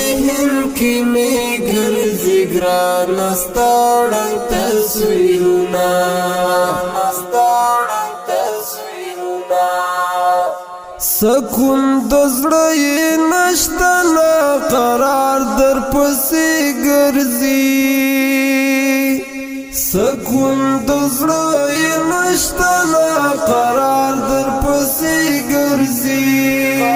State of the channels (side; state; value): both; identical; correlation 1.00